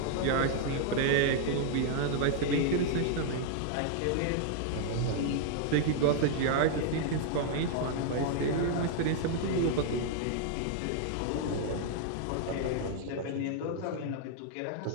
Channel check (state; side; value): different; both; correlation 0.00